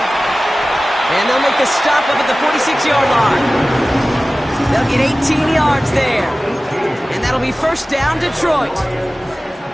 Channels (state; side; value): normal; both; correlation 0.97